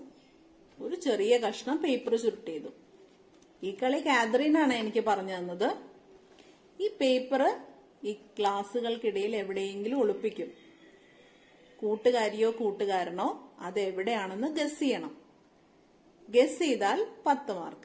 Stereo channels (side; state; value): both; identical; correlation 1.00